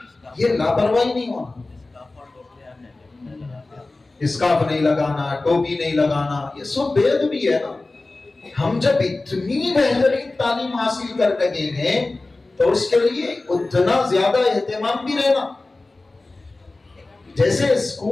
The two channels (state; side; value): quieter; right; 3.2 dB